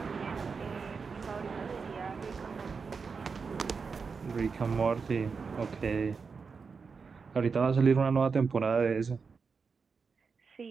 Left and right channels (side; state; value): left; quieter; 5.2 dB